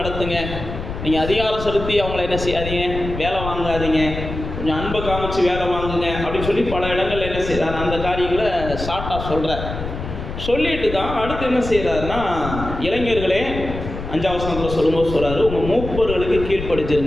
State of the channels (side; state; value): left; noise; rumble, 7 dB below the sound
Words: நீங்கள் அதிகாரம் செலுத்தி அவங்கள என்ன செய்யாதீங்க, வேலை வாங்காதீங்க, கொஞ்சம் அன்பை காமிச்சு வேலை வாங்குங்க அப்படின்னு சொல்லி பல இடங்களில் என்ன செய்கிறார், அந்த காரியங்களை ஷார்ட்டாக சொல்கிறார். சொல்லிட்டு தான் அடுத்து என்ன செய்கிறாருன்னா, இளைஞர்களே 5ஆம் வசனத்தில் சொல்லும்போது சொல்கிறாரு, உங்கள் மூப்பர்களுக்கு